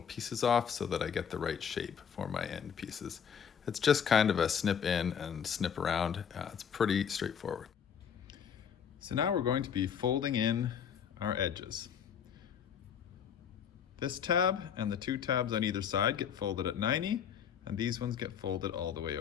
pieces off so that I get the right shape for my end pieces. It's just kind of a snip in and snip around. It's pretty straightforward. So now we're going to be folding in our edges. This tab and the two tabs on either side get folded at 90, and these ones get folded all the way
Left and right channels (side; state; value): right; quieter; 7.8 dB